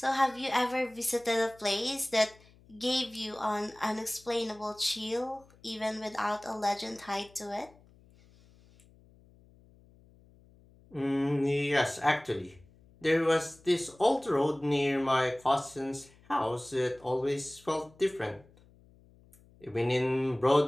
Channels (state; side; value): noise; left; hum, 27 dB below the sound